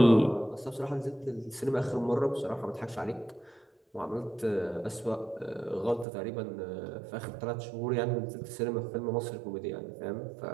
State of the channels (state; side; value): drops out; left; at 6.1 s